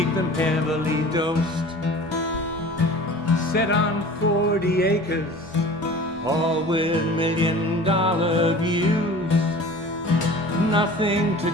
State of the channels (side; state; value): both; normal; correlation 0.42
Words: them heavily dosed. Set on 40 acres, all with $1 million views. Nothing to